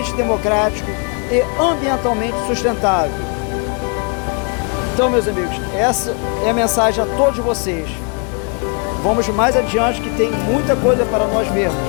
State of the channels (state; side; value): quieter; right; 36.5 dB